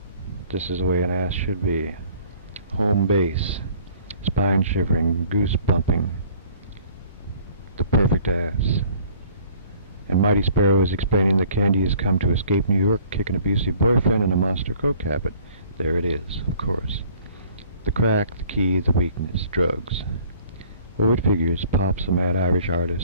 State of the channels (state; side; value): inverted; both; correlation -0.54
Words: This is the way an ass should be. Home base, spine shivering, goose bumping, the perfect ass. And Mighty Sparrow is explaining that Candy has come to escape New York, kick an abusive boyfriend, and a monster coke habit. There it is, of course. The crack, the key, the weakness, drugs. Oh, it figures. Pop's a mad Irish